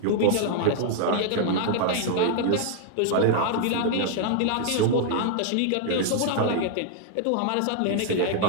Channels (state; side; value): different; both; correlation 0.00